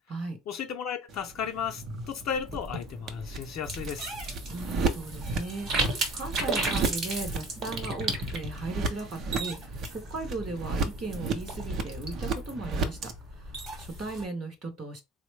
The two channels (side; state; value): both; normal; correlation 0.44